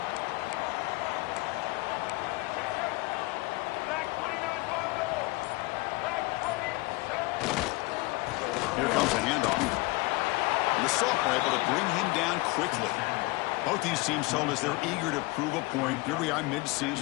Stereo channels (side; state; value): right; quieter; 23.1 dB